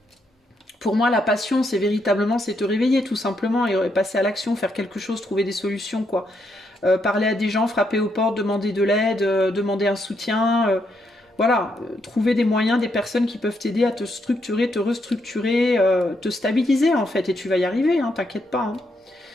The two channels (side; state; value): both; normal; correlation 0.78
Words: Pour moi, la passion, c'est véritablement, c'est te réveiller tout simplement et passer à l'action, faire quelque chose, trouver des solutions, quoi. Parler à des gens, frapper aux portes, demander de l'aide, demander un soutien... Voilà, trouver des moyens, des personnes qui peuvent t'aider à te structurer, te restructurer, te stabiliser en fait, et tu vas y arriver, hein, t'inquiète pas. Hein.